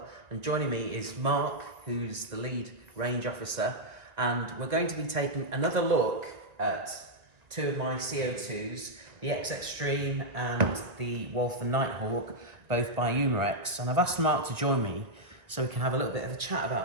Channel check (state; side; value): late; left; 1.9 ms